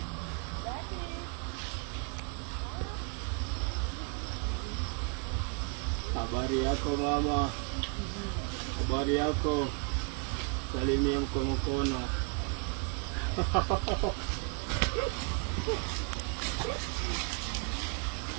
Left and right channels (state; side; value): quieter; left; 35.6 dB